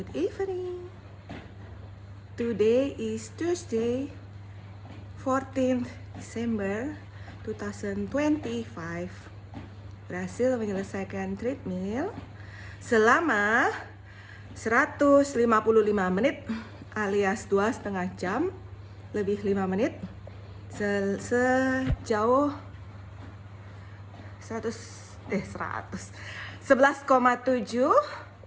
evening. Today is Tuesday, 14th December 2025. Berhasil menyelesaikan treadmill selama 155 menit alias 2,5 jam lebih 5 menit sejauh 11,7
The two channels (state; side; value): identical; both; correlation 1.00